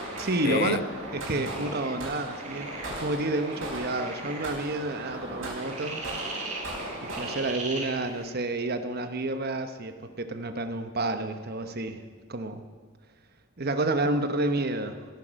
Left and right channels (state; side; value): normal; both; correlation 0.16